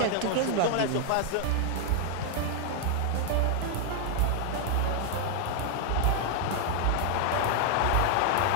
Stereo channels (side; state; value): both; different; correlation 0.00